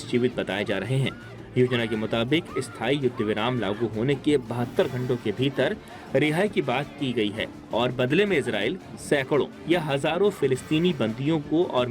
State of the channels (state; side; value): identical; both; correlation 1.00